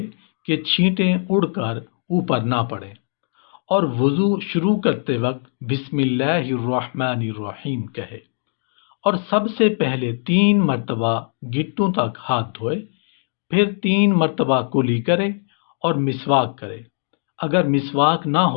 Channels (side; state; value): right; silent; digital silence